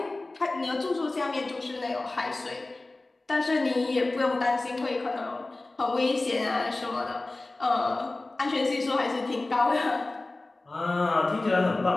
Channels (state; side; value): quieter; right; 3.0 dB